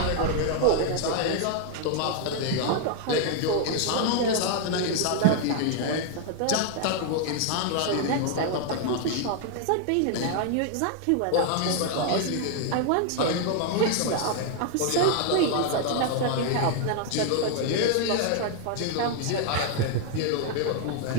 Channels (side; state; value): both; different; correlation 0.00